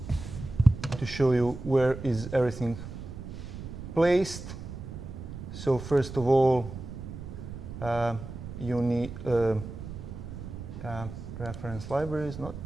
show you where is everything placed. So first of all, you need reference libraries, not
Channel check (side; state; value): right; noise; rumble, 10 dB below the sound